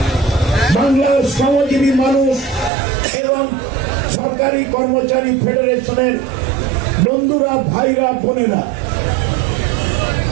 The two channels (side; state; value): left; drops out; at 2.7 s